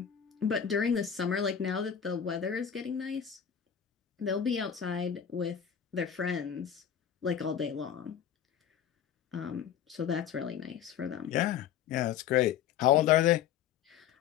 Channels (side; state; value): right; quieter; 8.8 dB